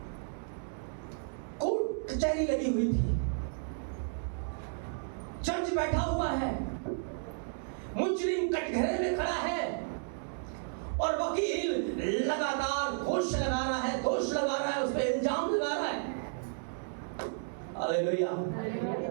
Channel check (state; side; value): silent; left; digital silence